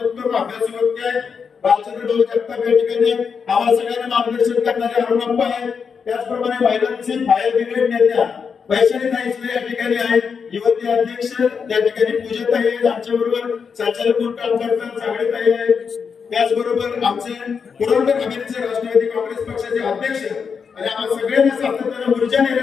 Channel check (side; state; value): right; quieter; 6.1 dB